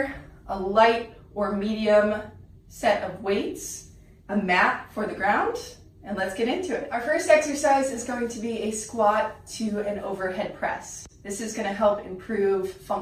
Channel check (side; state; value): both; identical; correlation 1.00